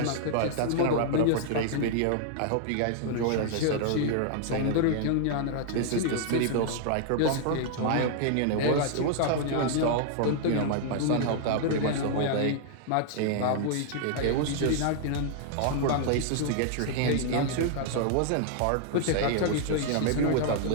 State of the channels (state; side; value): different; both; correlation 0.00